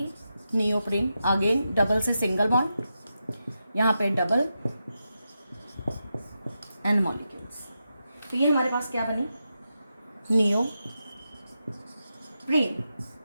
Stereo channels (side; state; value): both; inverted; correlation -0.88